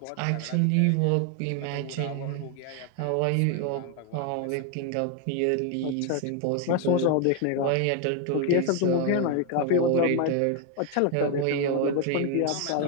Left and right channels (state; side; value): different; both; correlation 0.01